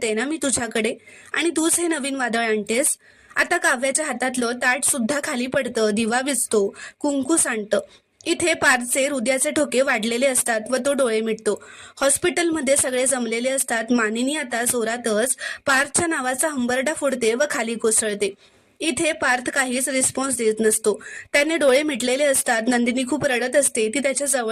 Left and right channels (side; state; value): both; identical; correlation 1.00